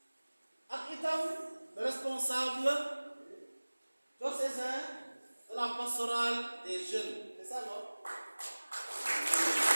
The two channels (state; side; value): inverted; both; correlation -1.00